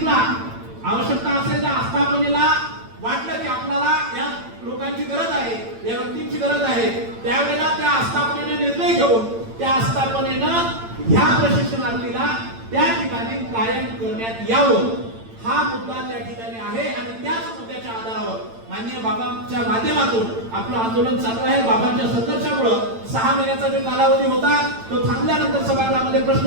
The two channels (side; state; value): left; late; 8.9 ms